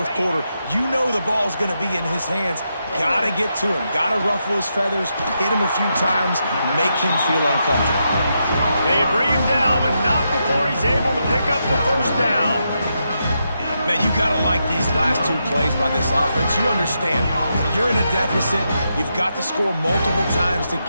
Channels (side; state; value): both; inverted; correlation -0.83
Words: quarter, you know the ball's going to be in his hands. Got to get to him. Got to ruffle his feathers, hit him a few times, make him feel uncomfortable. They bring him down, but not before he's able to pick up the 1st down. Man, you got to like these last 2 plays by this offense. You understand, you're in a deficit. You've got to score multiple times to